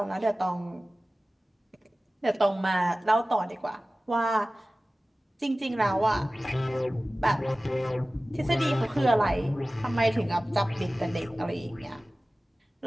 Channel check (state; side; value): normal; both; correlation 0.97